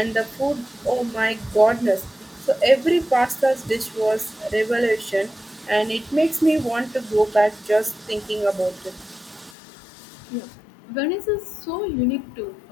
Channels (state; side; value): drops out; right; at 9.6 s